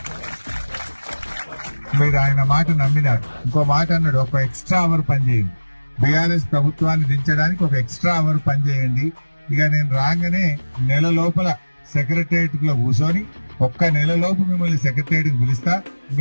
మీరు ఆయన మాట నమ్మినారు. ఇంకో మాట అన్నాడు, ఒక ఎక్స్ట్రా అవర్ పనిచేయండి, బీఆర్ఎస్ ప్రభుత్వాన్ని దించడానికి ఒక ఎక్స్ట్రా అవర్ పనిచేయండి. ఇక నేను రాగానే నెల లోపల సెక్రటరియట్ లో కూర్చొని ఒక్క నెల లోపు మిమ్మల్ని సెక్రటరియట్ పిలుస్తా,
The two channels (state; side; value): inverted; both; correlation -1.00